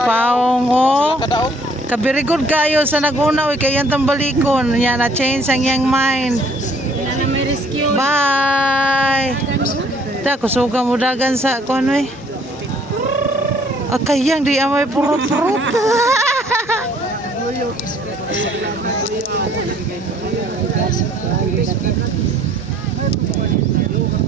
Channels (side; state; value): both; normal; correlation 0.59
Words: oh. kadaog. Kabirigod kayo sa naguna, oy. Kaya yung balikon. Yan, na-change ang iyang mind. Wala na may rescue. Bye! Da, kusuga mo dagan sa kung ano eh. Kayang di amay purot-purot.